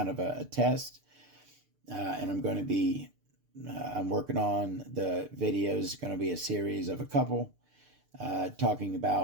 of a test, and I'm going to be, I'm working on the videos. It's going to be a series of a couple talking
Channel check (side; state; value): left; late; 6.7 ms